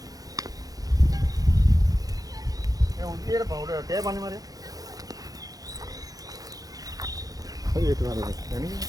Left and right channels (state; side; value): late; left; 0.18 ms